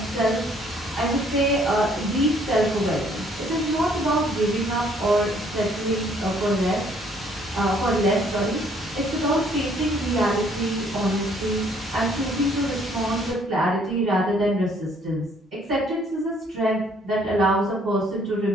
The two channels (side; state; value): both; normal; correlation 0.63